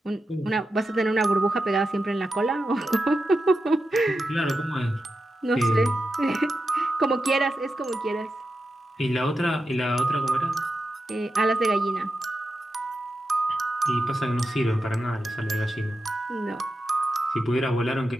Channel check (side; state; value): both; normal; correlation 0.89